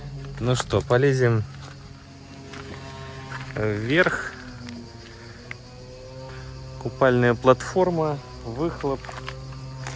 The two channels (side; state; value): both; identical; correlation 1.00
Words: Ну что, полезем вверх. Купальная платформа, выхлоп.